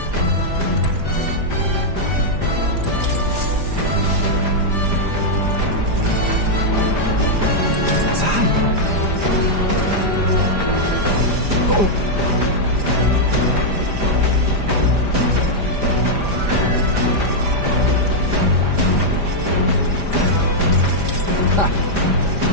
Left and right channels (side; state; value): left; late; 5.0 ms